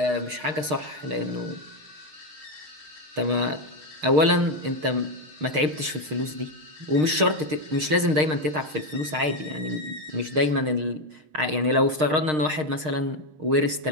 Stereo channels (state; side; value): late; left; 6.5 ms